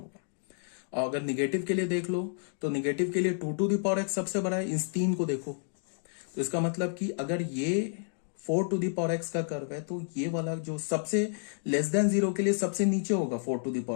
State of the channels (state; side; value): silent; right; digital silence